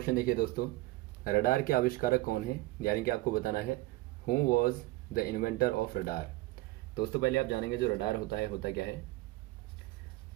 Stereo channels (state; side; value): quieter; left; 19.4 dB